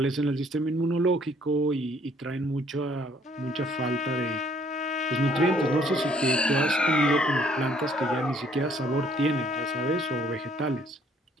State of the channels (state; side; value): normal; both; correlation 0.62